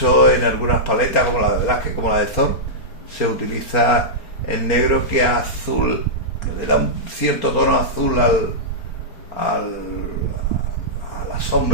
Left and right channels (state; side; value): late; right; 4.3 ms